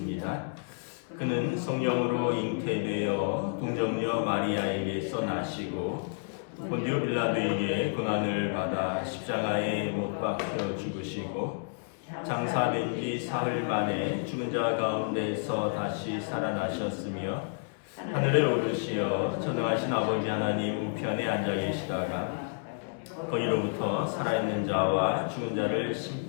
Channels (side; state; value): right; silent; digital silence